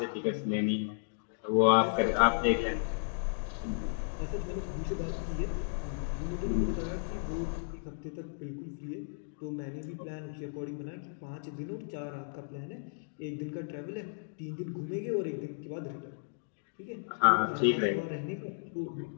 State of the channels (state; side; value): silent; right; digital silence